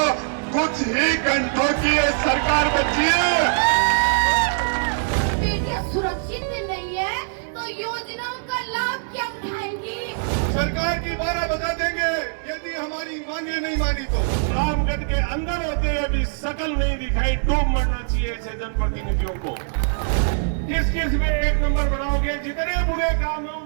कुछ ही घंटों की ये सरकार बची है। बेटियां सुरक्षित नहीं है तो योजनाओं का लाभ क्या उठाएंगी? सरकार की 12 बजा देंगे यदि हमारी मांगे नहीं मानी तो। रामगढ़ के अंदर होते हुए भी शकल नहीं दिखाई, डूब मरना चाहिए ऐसे जनप्रतिनिधियों को। किस किस में एक नंबर बनाओगे? जितने बुरे काम है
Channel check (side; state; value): left; silent; digital silence